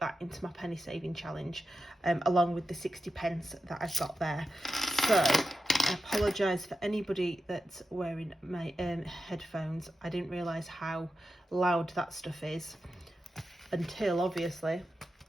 that into my penny saving challenge, along with the 60p that I've got there. So I apologise for anybody that's wearing my headphones. I didn't realise how loud that stuff is until, obviously,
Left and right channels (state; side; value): normal; both; correlation 0.91